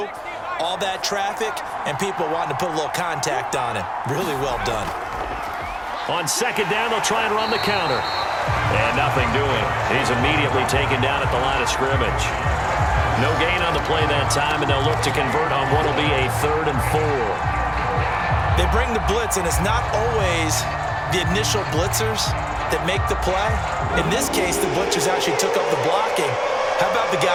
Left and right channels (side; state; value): both; identical; correlation 1.00